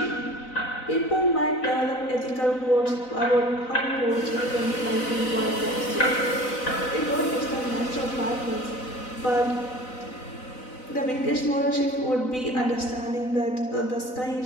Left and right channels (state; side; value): late; right; 4.0 ms